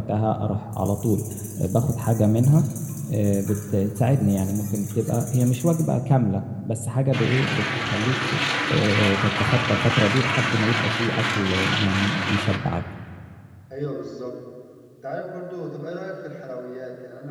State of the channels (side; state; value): both; identical; correlation 1.00